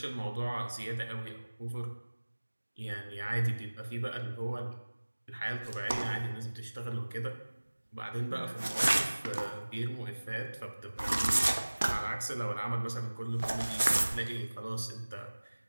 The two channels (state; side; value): inverted; both; correlation -1.00